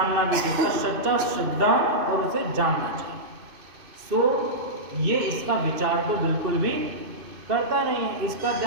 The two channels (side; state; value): left; late; 2.6 ms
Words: भी चाहिए, सच्चा श्रद्धा और उसे जानना चाहिए। सो ये इसका विचार तो बिल्कुल भी करता नहीं है, इसका